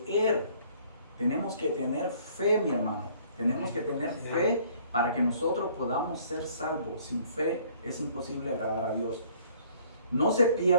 tenemos que tener fe, mi hermano, tenemos que tener fe para que nosotros podamos ser salvos. Sin fe es imposible agradar a Dios. No se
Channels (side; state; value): both; inverted; correlation -0.58